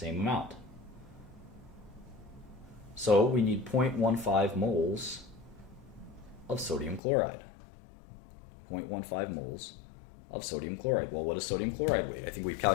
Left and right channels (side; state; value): right; drops out; at 7.0 s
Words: amount. So we need 0.15 moles of sodium chloride. 0.15 moles of sodium chloride. Well, what does sodium chloride weigh? I think we've